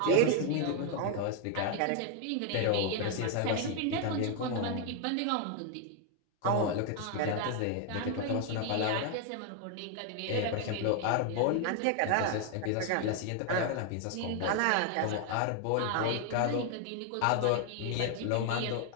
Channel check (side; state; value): both; different; correlation 0.00